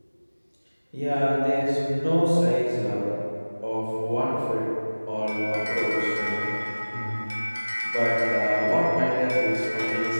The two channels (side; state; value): both; inverted; correlation -1.00